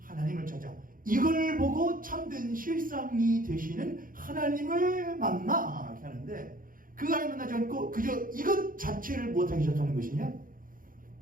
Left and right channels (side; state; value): left; late; 0.40 ms